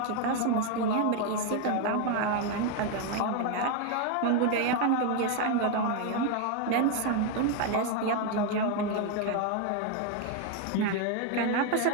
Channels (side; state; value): both; different; correlation 0.01